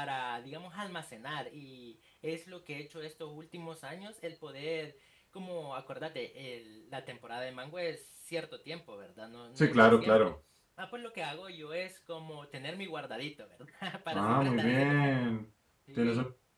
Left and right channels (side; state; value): both; identical; correlation 1.00